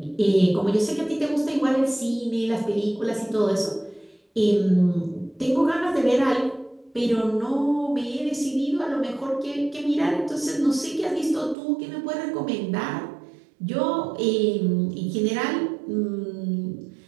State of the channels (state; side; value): drops out; left; at 11.6 s